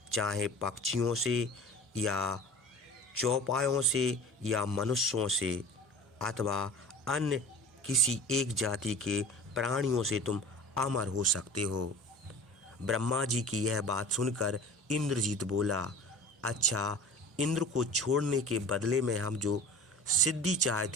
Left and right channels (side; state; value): both; normal; correlation 0.38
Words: चाहे पक्षियों से या चौपायों से या मनुष्यों से अथवा अन्य किसी एक जाति के प्राणियों से तुम अमर हो सकते हो। ब्रह्मा जी की यह बात सुनकर इंद्रजीत बोला, अच्छा, इंद्र को छोड़ने के बदले में हम जो सिद्धि